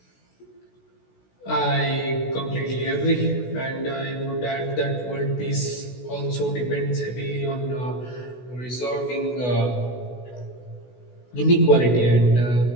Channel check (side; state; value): right; late; 16 ms